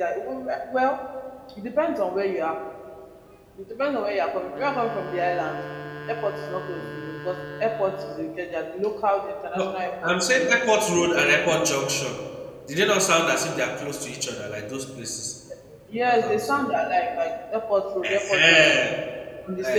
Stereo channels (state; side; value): identical; both; correlation 1.00